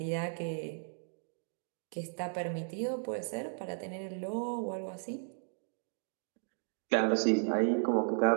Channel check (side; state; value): left; silent; digital silence